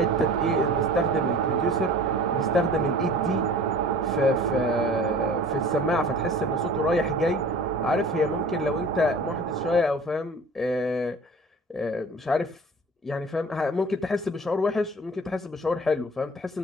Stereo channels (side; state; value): both; normal; correlation 0.43